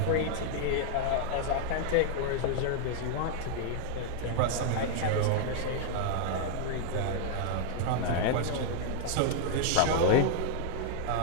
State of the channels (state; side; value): different; both; correlation -0.01